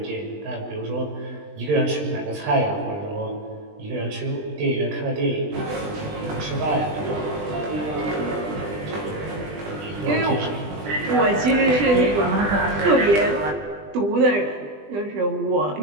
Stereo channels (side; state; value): left; late; 20 ms